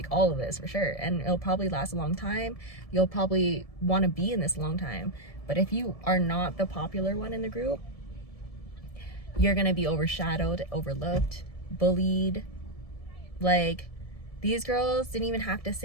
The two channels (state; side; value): late; right; 1.7 ms